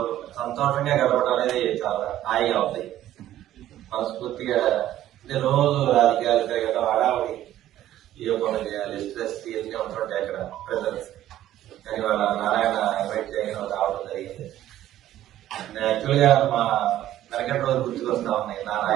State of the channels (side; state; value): left; quieter; 13.0 dB